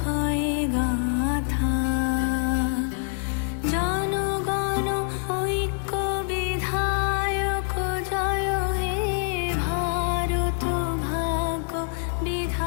হয় গাথা। জনগণ ঐক্য বিধায়ক জয় হে ভারত ভাগ্য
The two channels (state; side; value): silent; right; digital silence